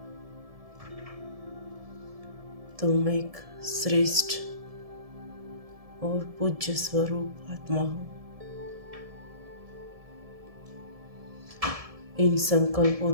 तुम एक श्रेष्ठ और पूज्य स्वरूप आत्मा हो। इन संकल्पों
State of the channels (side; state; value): left; late; 1.7 ms